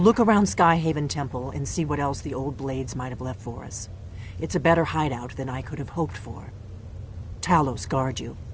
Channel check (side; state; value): both; identical; correlation 1.00